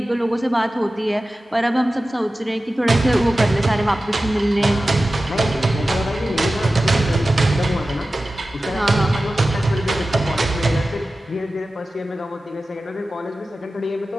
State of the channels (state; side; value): normal; both; correlation 0.95